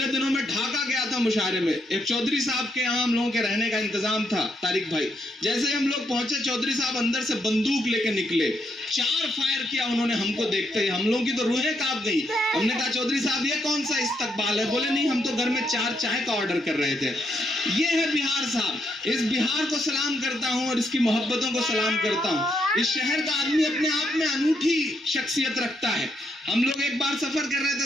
दिनों में ढाका गया था मुशायरे में, एक चौधरी साहब के यहाँ हम लोगों के रहने का इंतजाम था, तारिक भाई। जैसे ही हम लोग पहुंचे, चौधरी साहब अंदर से बंदूक लेके निकले, 4 फायर किया उन्होंने हमको देखते ही। हम लोगों की तो रूहें कांप गई। हमने कहा चौधरी साहब ये कौन सा इस्तकबाल है? बोले नहीं, हम तो घर में 4 चाय का ऑर्डर कर रहे थे। ये है बिहार साहब। इस बिहार को सलाम करता हूँ और इसकी मोहब्बतों को सलाम करता हूँ। इस शहर का आदमी अपने आप में अनूठी शख्सियत रखता है। हम लोग एक बार सफर कर रहे थे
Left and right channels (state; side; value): normal; both; correlation 0.77